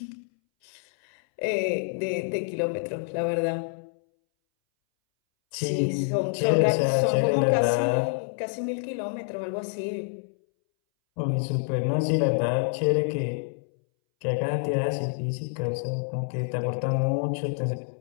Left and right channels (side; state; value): right; silent; 60 dB below the other